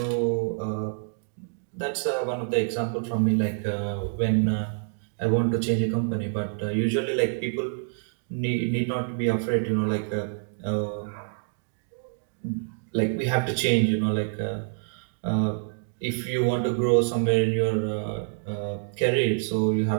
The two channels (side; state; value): left; silent; digital silence